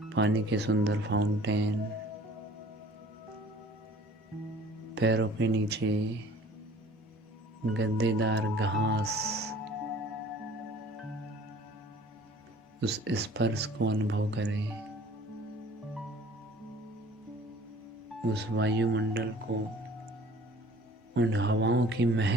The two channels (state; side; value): normal; both; correlation 0.49